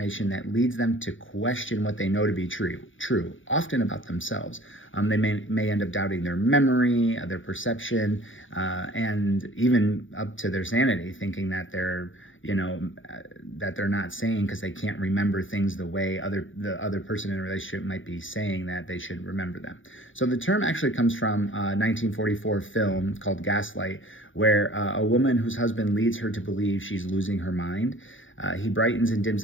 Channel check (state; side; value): late; right; 0.57 ms